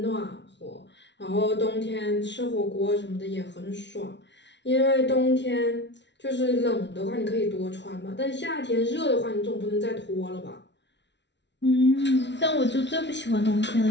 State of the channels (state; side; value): late; right; 0.51 ms